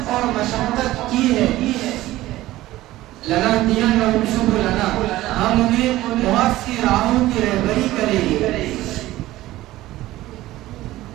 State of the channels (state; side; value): quieter; left; 16.3 dB